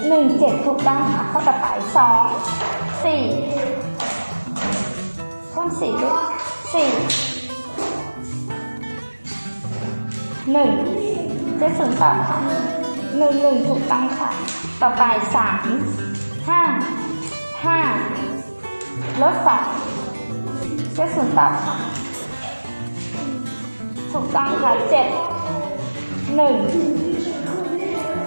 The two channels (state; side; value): inverted; both; correlation -1.00